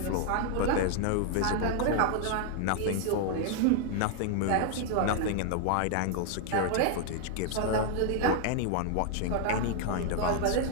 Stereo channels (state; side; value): different; both; correlation 0.00